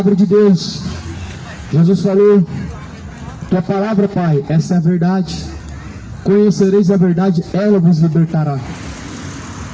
de Deus. Jesus falou Tua palavra, Pai, essa é a verdade. Conhecereis a verdade, ela vos libertará.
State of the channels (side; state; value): both; identical; correlation 1.00